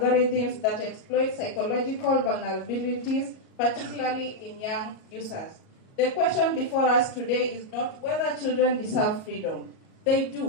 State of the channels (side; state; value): right; late; 37 ms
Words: that exploit psychological vulnerabilities, particularly in young users. The question before us today is not whether children deserve freedom. They